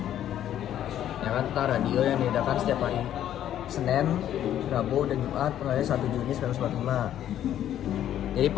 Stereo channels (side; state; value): right; quieter; 11.2 dB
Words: ya kan, tentang radio yang diadakan setiap hari Senin, Rabu, dan Jumat mulai 1 Juni 1945. Jadi